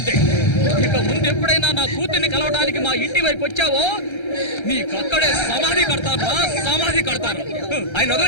ఇక ముందు ఎప్పుడైనా నా కూతుర్ని కలవడానికి మా ఇంటి వైపు వచ్చావో నీకక్కడే సమాధి కడతారా, సమాధి కడతారు. ఆయన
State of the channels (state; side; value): late; right; 1.3 ms